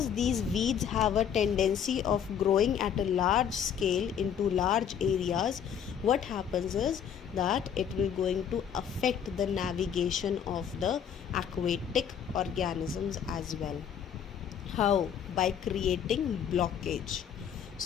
these weeds have a tendency of growing at a large scale into large areas, what happens is that it will going to affect the navigation of the aquatic organisms as well. How? By creating blockage.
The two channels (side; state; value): right; quieter; 8.3 dB